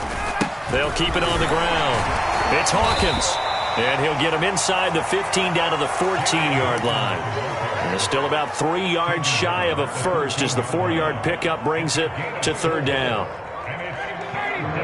They'll keep it on the ground. It's Hawkins. And he'll get him inside the 15 down to the 14-yard line. And it's still about 3 yards shy of a first as the 4-yard pickup brings it to 3rd down.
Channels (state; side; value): identical; both; correlation 1.00